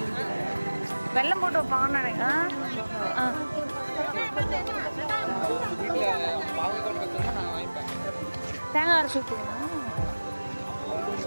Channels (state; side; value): inverted; both; correlation -1.00